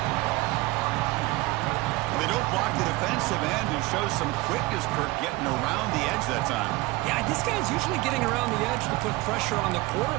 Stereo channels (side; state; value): left; quieter; 21.5 dB